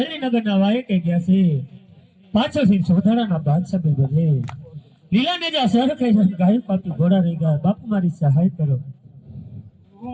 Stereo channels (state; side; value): identical; both; correlation 1.00